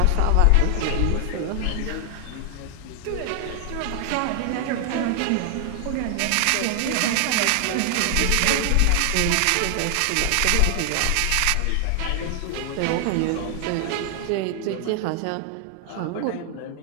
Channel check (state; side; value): different; both; correlation 0.00